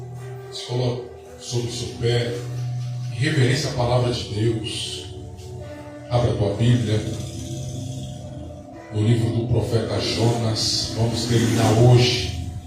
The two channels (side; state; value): both; identical; correlation 1.00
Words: se coloque sobre o seu pé em reverência à palavra de Deus. Abra a tua Bíblia no livro do profeta Jonas. Vamos terminar hoje,